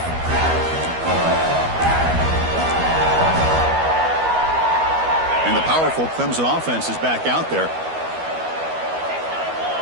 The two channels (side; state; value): left; late; 12 ms